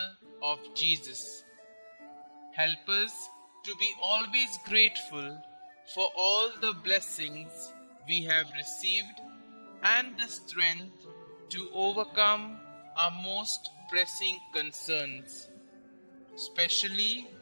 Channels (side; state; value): both; inverted; correlation -1.00